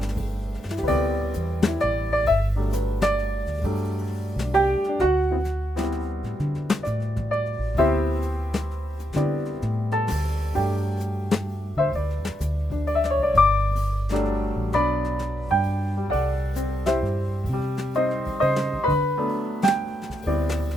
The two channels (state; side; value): normal; both; correlation 0.82